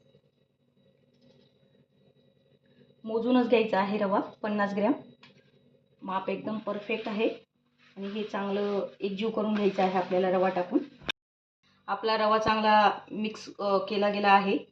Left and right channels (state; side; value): identical; both; correlation 1.00